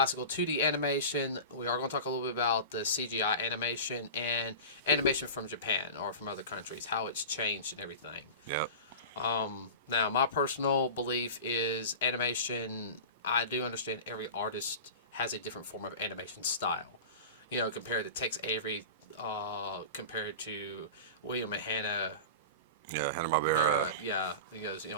2D animation. We are going to talk a little bit about the CGI animation and animation from Japan or from other countries, how it's changed and everything. Yep. Now, my personal belief is animation, I do understand every artist has a different form of animation style. Compared to Tex Avery, compared to William and Hanna. Yeah, Hanna-Barbera.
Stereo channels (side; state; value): both; inverted; correlation -0.32